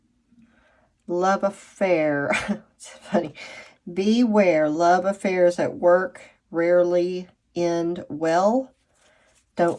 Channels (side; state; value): both; identical; correlation 1.00